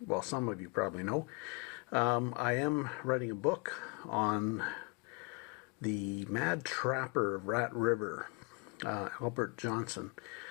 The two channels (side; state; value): right; quieter; 31.0 dB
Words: some of you probably know, I am writing a book on the Mad Trapper of Rat River, Albert Johnson.